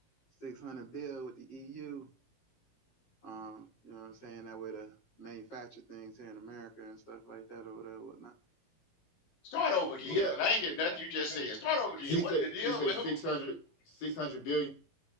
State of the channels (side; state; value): right; late; 19 ms